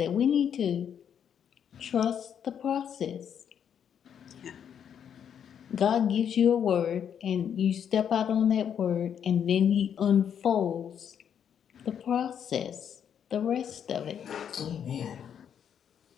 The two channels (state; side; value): quieter; right; 8.4 dB